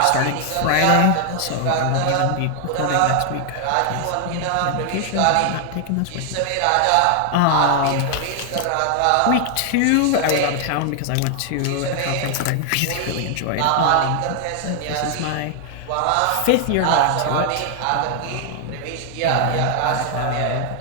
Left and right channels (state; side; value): different; both; correlation 0.00